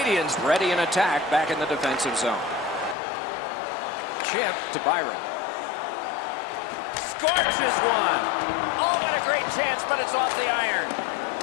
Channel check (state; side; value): drops out; right; at 3.0 s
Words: ready in attack back in the defensive zone. Chip to Byron. Scorches one. Oh, what a great chance, but it's off the iron.